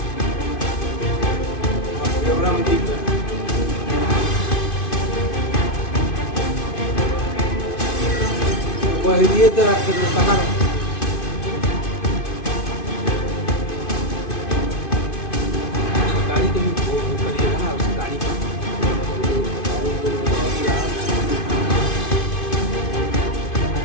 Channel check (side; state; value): right; late; 2.5 ms